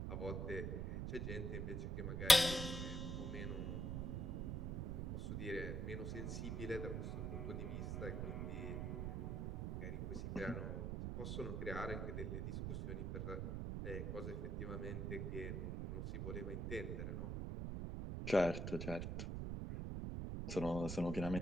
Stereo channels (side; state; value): right; noise; rumble, 2 dB below the sound